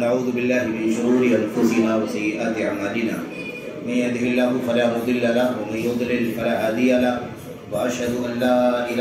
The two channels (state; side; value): identical; both; correlation 1.00